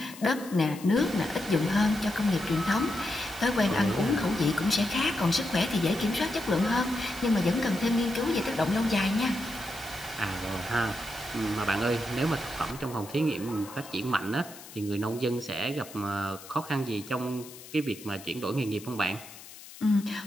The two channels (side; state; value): left; noise; hiss, 17 dB below the sound